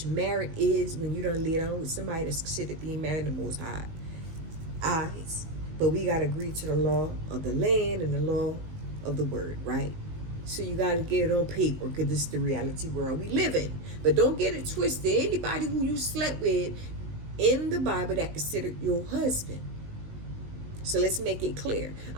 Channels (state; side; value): late; left; 19 ms